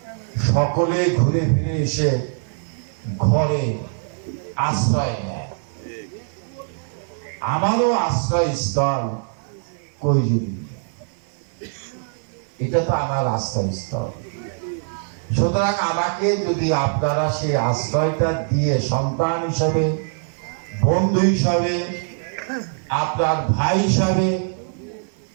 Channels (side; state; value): left; silent; 64 dB below the other